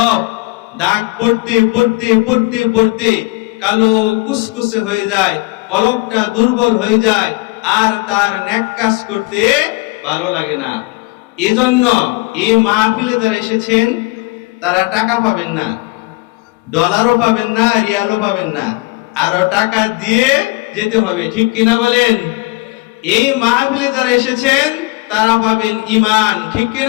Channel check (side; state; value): right; quieter; 24.2 dB